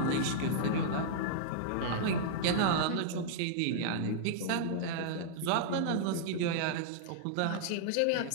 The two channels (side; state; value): both; different; correlation -0.02